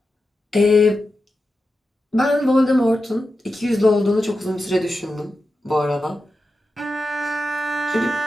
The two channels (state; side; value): normal; both; correlation 0.90